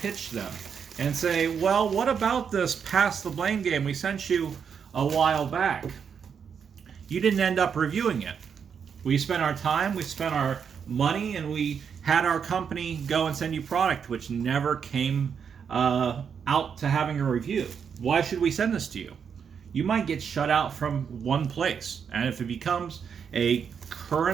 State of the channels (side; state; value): left; quieter; 7.0 dB